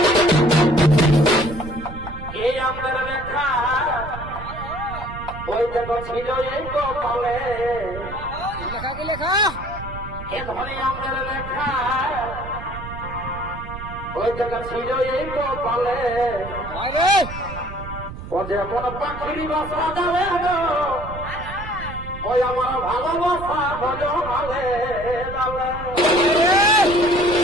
এই আমাদের লেখা ওই দেখো ছিল এই কপালে লেখা কি লেখা এ ধরে আমাদের লেখা ওই দেখো ছিল এই কপালে আরে ও যেমন পাখির বাসা যাবে ওই আমার ভালোবাসা হলো ভালে যাবে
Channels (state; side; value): noise; right; rumble, 11 dB below the sound